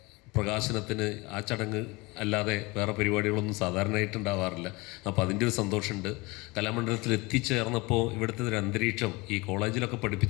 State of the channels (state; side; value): quieter; right; 24.5 dB